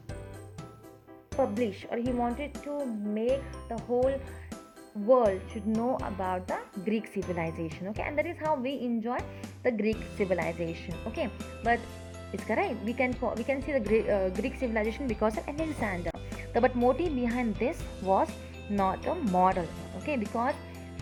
publish, or he wanted to make the whole world should know about the Greek civilization. Okay, and that is how we enjoy the Greek civilization. Okay, but it's correct. We can see the Greek civilization because of Alexander. But motive behind this was not a model. Okay, because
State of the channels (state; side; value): identical; both; correlation 1.00